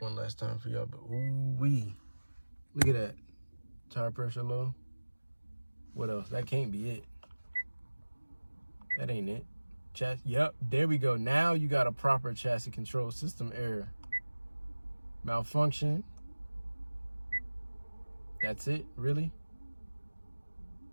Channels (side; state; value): both; inverted; correlation -1.00